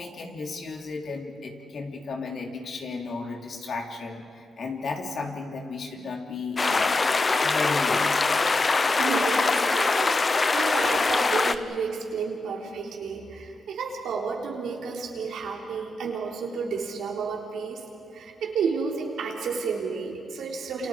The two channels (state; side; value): normal; both; correlation 0.86